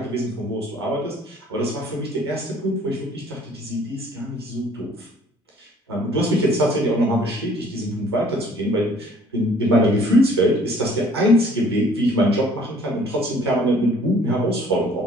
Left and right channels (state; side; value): normal; both; correlation 0.56